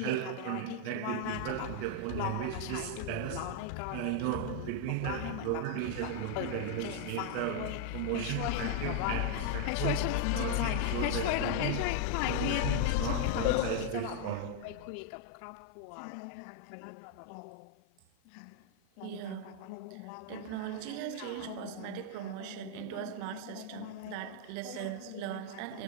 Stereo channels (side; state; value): both; different; correlation 0.00